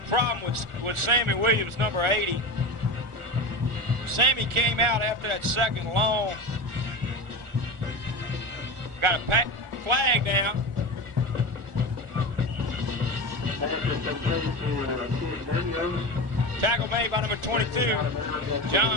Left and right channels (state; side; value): late; left; 1.4 ms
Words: problem with Sammy Williams, number 80. Sammy came out after that second long. Got a flag now. Tackle made by number 22,